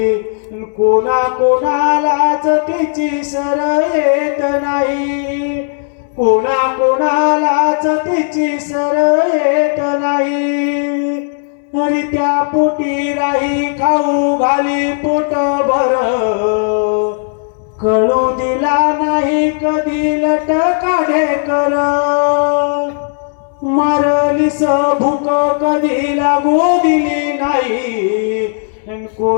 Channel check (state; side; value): silent; right; digital silence